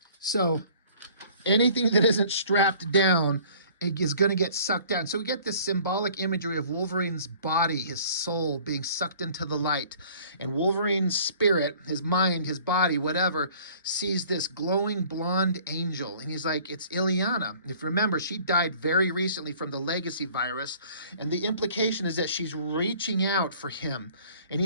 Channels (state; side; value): inverted; both; correlation -0.52